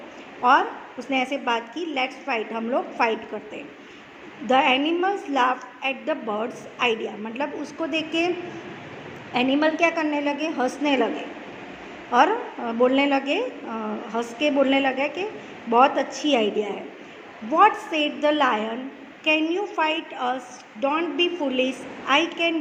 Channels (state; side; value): identical; both; correlation 1.00